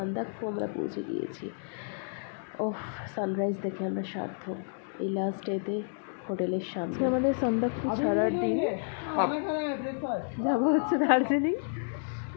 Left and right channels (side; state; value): right; silent; digital silence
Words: আমরা পৌঁছে গিয়েছি। ওফ, সানরাইজ দেখে আমরা সার্থক। এই লাস্ট ডেতে হোটেলের সামনে আমাদের সান্দাকফু ছাড়ার দিন, যাবো হচ্ছে দার্জিলিং।